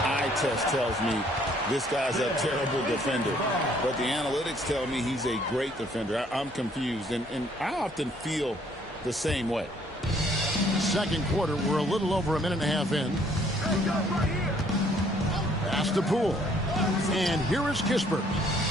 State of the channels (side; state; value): both; normal; correlation 0.63